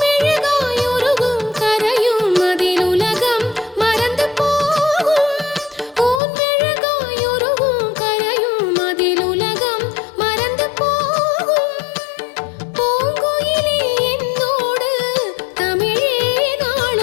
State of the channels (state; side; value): drops out; right; at 6.2 s